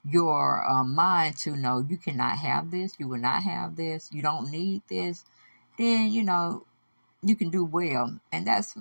your mind to know you cannot have this, you will not have this, you don't need this, then, you can do well. And that's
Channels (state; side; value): inverted; both; correlation -1.00